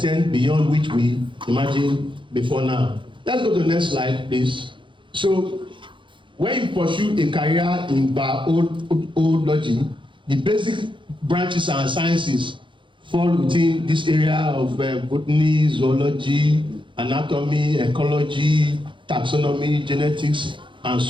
beyond which we imagined before now. Let's go to the next slide, please. So when you pursue a career in biology, the basic branches and sciences fall within this area of botany, zoology, anatomy, ecology, taxonomy, genetics, and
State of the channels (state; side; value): late; left; 0.24 ms